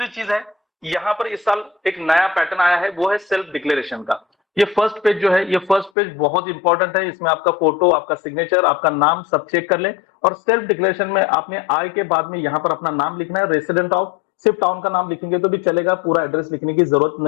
चीज है, यहाँ पर इस साल एक नया पैटर्न आया है, वो है सेल्फ डिक्लेरेशन का। ये फर्स्ट पेज जो है, ये फर्स्ट पेज बहुत इंपॉर्टेंट है। इसमें आपका फोटो, आपका सिग्नेचर, आपका नाम सब चेक कर लें। और सेल्फ डिक्लेरेशन में आपने आय के बाद में यहाँ पर अपना नाम लिखना है, रेसिडेंट ऑफ, सिर्फ टाउन का नाम लिखेंगे तो भी चलेगा, पूरा एड्रेस लिखने की जरूरत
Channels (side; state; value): right; drops out; at 5.9 s